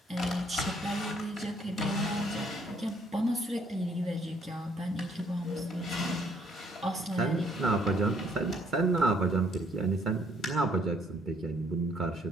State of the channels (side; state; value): both; normal; correlation 0.65